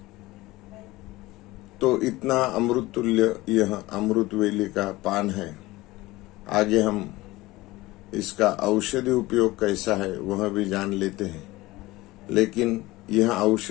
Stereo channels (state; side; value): quieter; right; 19.4 dB